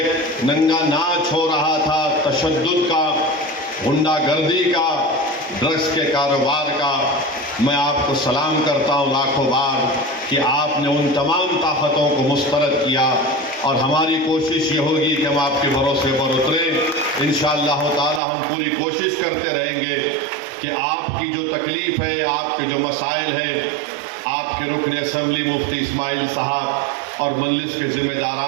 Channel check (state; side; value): drops out; left; at 18.2 s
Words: नंगा नाच हो रहा था तशद्दुद का, गुंडागर्दी का, ड्रग्स के कारोबार का, मैं आपको सलाम करता हूँ लाखों बार कि आपने उन तमाम ताकतों को मुस्तरद किया और हमारी कोशिश ये होगी कि हम आपके भरोसे पर उतरें। इंशाअल्लाह ताला हम पूरी कोशिश करते रहेंगे कि आपकी जो तकलीफ़ है, आपके जो मसाइल हैं, आपके रुकन असम्बली मुफ्ती इस्माइल साहब और मजलिस के